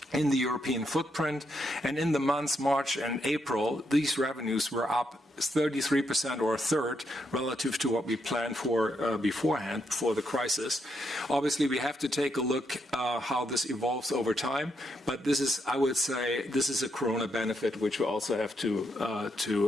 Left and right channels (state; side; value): normal; both; correlation 0.79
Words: in the European footprint. And in the months March and April, these revenues were up 33% or a third relative to what we planned for beforehand, before the crisis. Obviously, we have to take a look how this evolves over time, but this is, I would say, this is a corona benefit which we also have